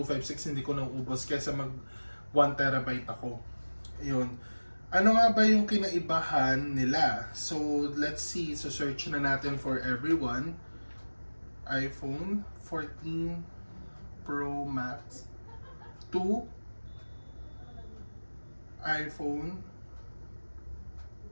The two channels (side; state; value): both; inverted; correlation -1.00